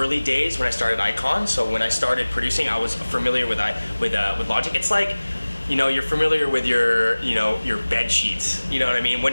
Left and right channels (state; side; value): inverted; both; correlation -1.00